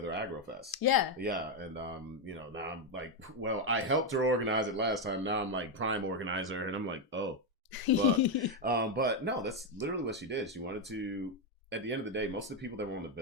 Agrofest. Yeah. Yeah, and you know, now I'm like, well, I helped her organize it last time. Now I'm like prime organizer, and I'm like, oh. But no, that's literally what she did. She wanted to. At the end of the day, most of the people that were on the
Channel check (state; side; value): normal; both; correlation 0.05